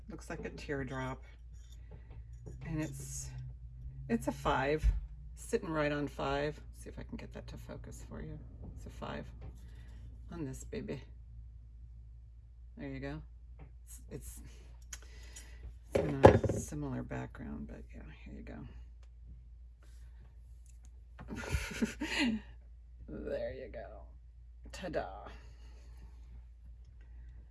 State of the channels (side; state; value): both; identical; correlation 1.00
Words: looks like a teardrop. And it's a 5, sitting right on 5. See if I can get that to focus for you. It's a 5 on this baby. There you go. It's in a similar background, but yeah, here you go. There you go. Ta-da.